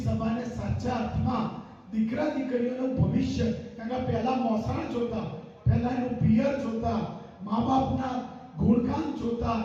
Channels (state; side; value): identical; both; correlation 1.00